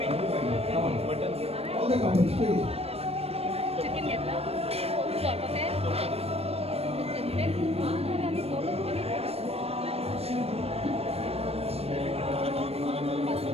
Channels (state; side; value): late; left; 0.29 ms